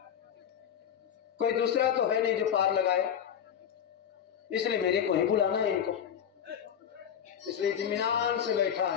कोई दूसरा तो है नहीं जो पार लगाए, इसलिए मेरे को ही बुलाना है इनको, इसलिए इत्मीनान से बैठा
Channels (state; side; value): quieter; right; 8.8 dB